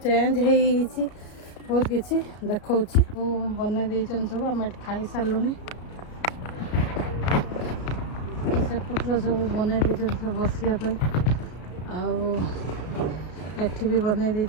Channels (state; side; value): late; right; 33 ms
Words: हो बहुत किसी देखा बनई दे सब आम खाई सारू सेपटर सब बनई दे सब बसापी आठ भी बनई दे